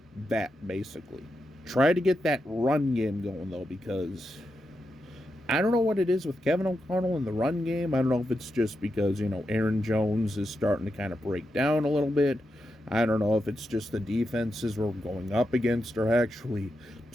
that, basically. Try to get that run game going, though, because I don't know what it is with Kevin O'Connell in the run game. I don't know if it's just because, Aaron Jones is starting to kind of break down a little bit. I don't know if it's just the defenses we're going up against are actually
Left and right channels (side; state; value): both; normal; correlation 0.86